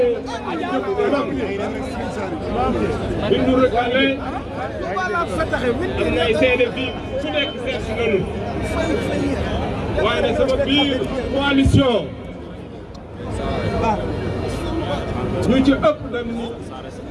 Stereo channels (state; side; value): identical; both; correlation 1.00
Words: jëm kanam bi nu recalé am na ay seede fii su nekk seet si nañu waaye nag sama biir coalition ñu ci ëpp dem ni